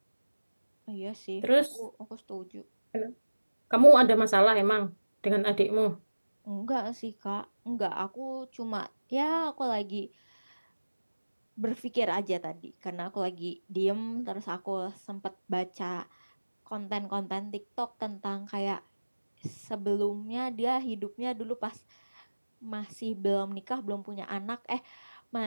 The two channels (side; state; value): both; inverted; correlation -1.00